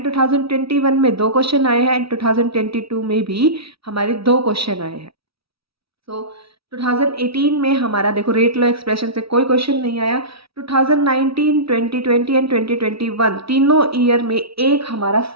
2021 में 2 क्वेश्चन आए हैं एंड 2022 में भी हमारे 2 क्वेश्चन आए हैं। सो 2018 में हमारा देखो रेट लॉ एक्सप्रेशन से कोई क्वेश्चन नहीं आया। 2019, 2020 एंड 2021 तीनों ईयर में एक हमारा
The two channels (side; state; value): left; late; 0.76 ms